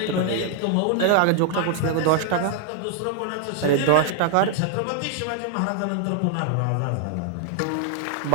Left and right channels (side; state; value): both; different; correlation 0.00